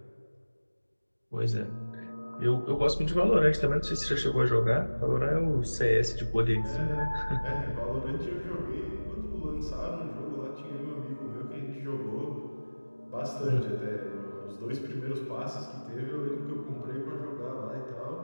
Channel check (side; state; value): both; inverted; correlation -1.00